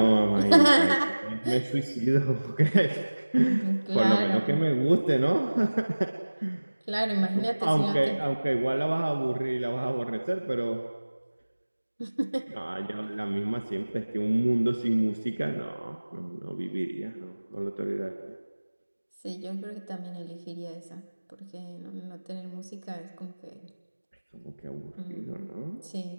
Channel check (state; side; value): inverted; both; correlation -1.00